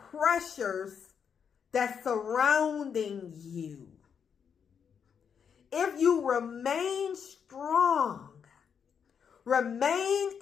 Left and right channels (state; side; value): quieter; right; 7.1 dB